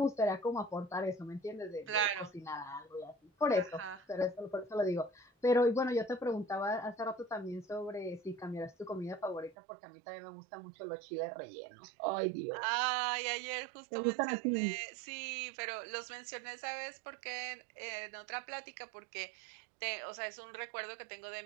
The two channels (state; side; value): drops out; left; at 9.6 s